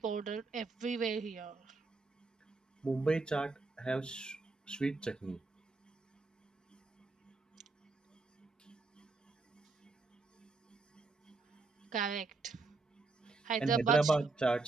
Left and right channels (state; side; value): quieter; left; 3.7 dB